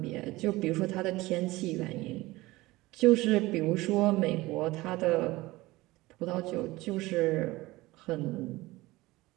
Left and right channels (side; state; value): left; quieter; 19.7 dB